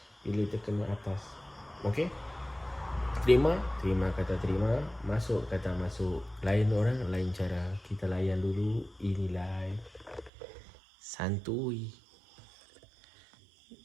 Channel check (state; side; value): drops out; left; at 10.3 s